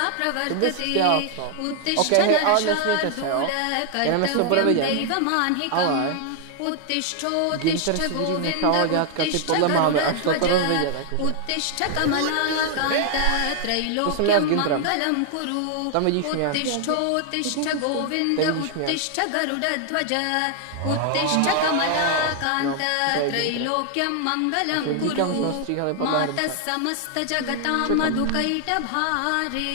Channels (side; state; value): both; different; correlation 0.00